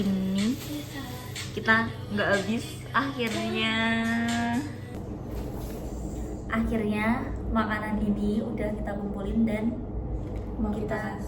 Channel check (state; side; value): identical; both; correlation 1.00